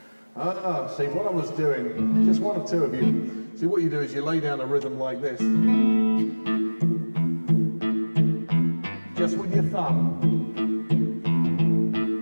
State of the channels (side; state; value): both; inverted; correlation -1.00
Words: See, what I was doing, just one or two of you, see what you do is you lay down a rhythm like this. Just with your thumb.